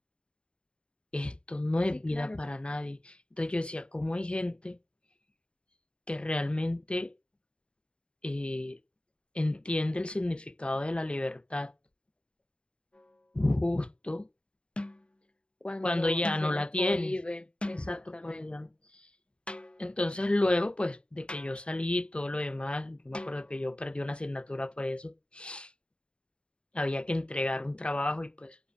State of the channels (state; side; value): late; right; 0.054 ms